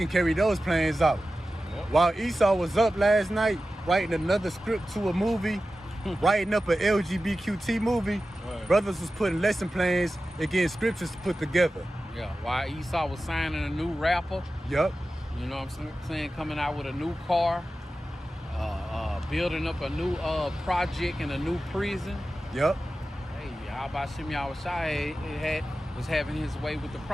carry those plans out. Yep. While Esau was up last night, writing another script to a movie, writing up an LGBTQ movie, Right. brothers was putting lesson plans against scriptures to put together. Yeah, while Esau was signing a new rapper, Yup. you know what I'm saying, coming out with a new car, building up a new project in a new prison. Yup. Hey, how about Shem Yahushua was having his way with the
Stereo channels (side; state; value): both; normal; correlation 0.94